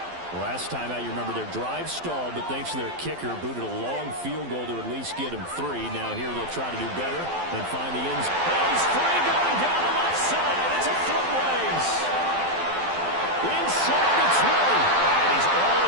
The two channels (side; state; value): left; late; 12 ms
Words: Last time out, you remember their drive stalled, but thanks to their kicker, booted a long field goal to at least get him 3. Now here they'll try to do better and find the ends. Oh, he's free going down the left side. It's a foot race. Inside the 20. And he's all